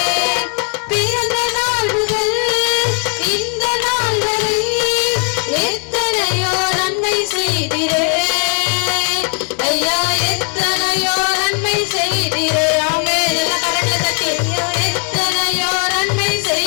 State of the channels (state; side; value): quieter; right; 37.8 dB